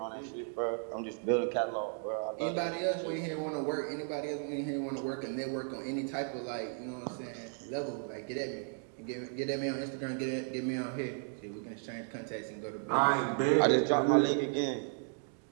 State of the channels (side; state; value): left; silent; 55 dB below the other